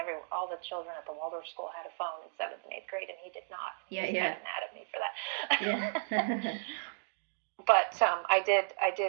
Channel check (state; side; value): silent; left; digital silence